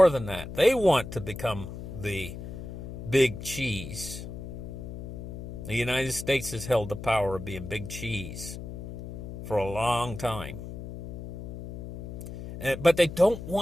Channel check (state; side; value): noise; left; hum, 10 dB below the sound